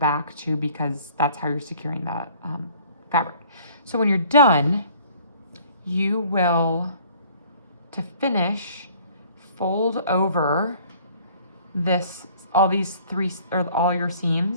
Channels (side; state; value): both; inverted; correlation -0.54